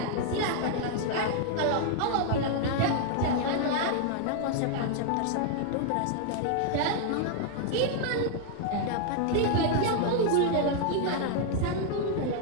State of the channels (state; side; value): different; both; correlation 0.00